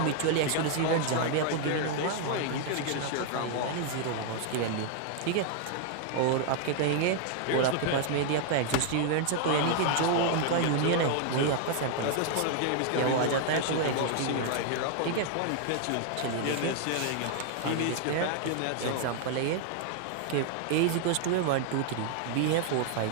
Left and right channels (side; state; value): both; different; correlation 0.00